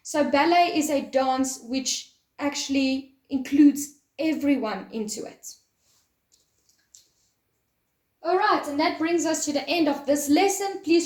So ballet is a dance which actually includes everyone into it. All right, and that brings us to the end of this lesson.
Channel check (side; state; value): both; identical; correlation 1.00